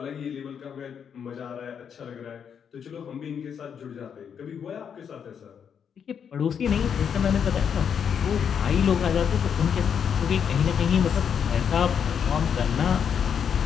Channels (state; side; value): quieter; right; 7.6 dB